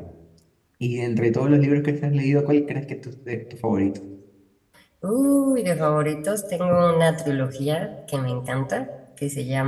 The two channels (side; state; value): both; identical; correlation 1.00